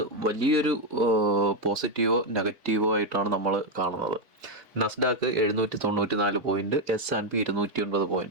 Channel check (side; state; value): left; late; 2.2 ms